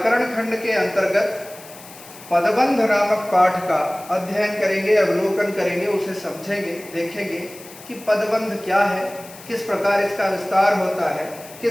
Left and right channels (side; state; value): left; noise; hiss, 18 dB below the sound